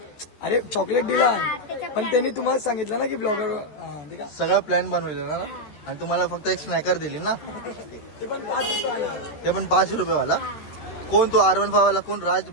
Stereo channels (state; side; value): late; right; 13 ms